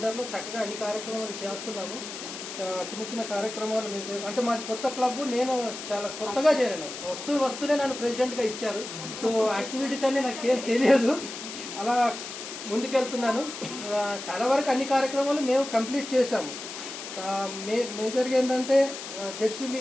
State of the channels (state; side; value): noise; left; hiss, 9 dB below the sound